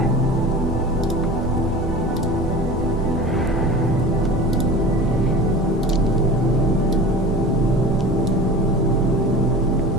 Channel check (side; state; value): both; normal; correlation 0.36